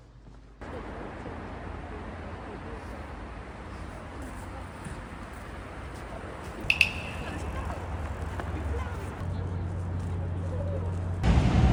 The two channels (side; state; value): both; identical; correlation 1.00